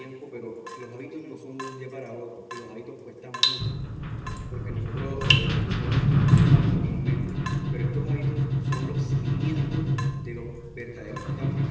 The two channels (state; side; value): identical; both; correlation 1.00